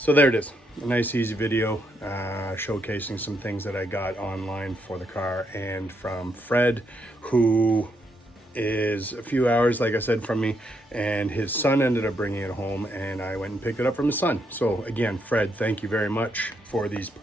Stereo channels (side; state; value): both; normal; correlation 0.77